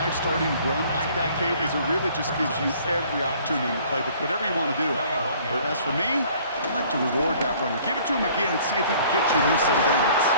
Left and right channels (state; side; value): inverted; both; correlation -0.55